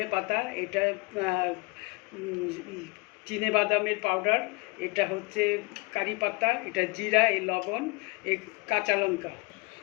পাতা, এটা চিনে বাদামের পাউডার, এটা হচ্ছে কারি পাতা, এটা জিরা, এই লবণ, এই কাঁচা লঙ্কা।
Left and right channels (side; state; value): right; quieter; 27.7 dB